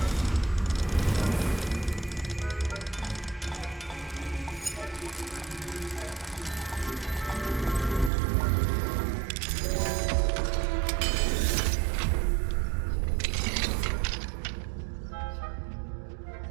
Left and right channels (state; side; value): drops out; left; at 8.1 s